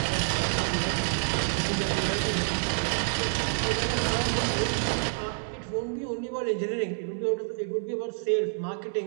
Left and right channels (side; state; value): left; silent; digital silence